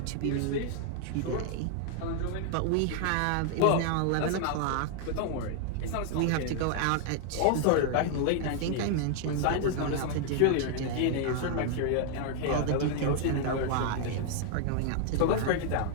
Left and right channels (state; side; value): different; both; correlation 0.00